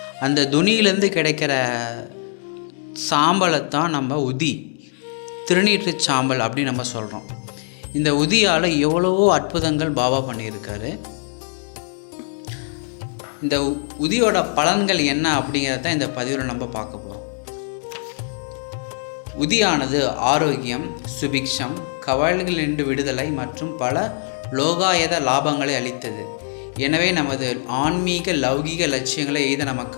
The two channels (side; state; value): right; silent; 61 dB below the other